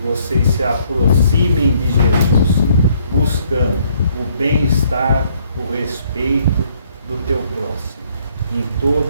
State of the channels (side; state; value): both; inverted; correlation -0.66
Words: se aproximem de Jesus, buscando o bem-estar, o respeito do teu próximo, em